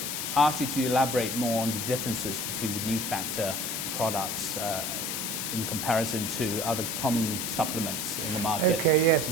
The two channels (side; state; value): left; noise; hiss, 2 dB below the sound